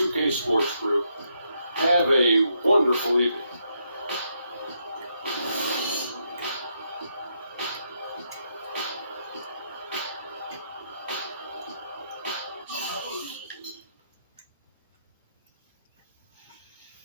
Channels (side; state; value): both; inverted; correlation -0.78